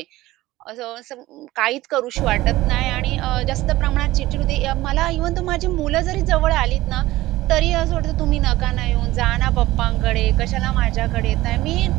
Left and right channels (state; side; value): quieter; left; 17.3 dB